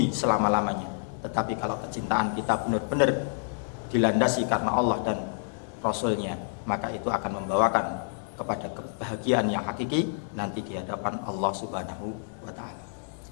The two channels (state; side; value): silent; right; 59 dB below the other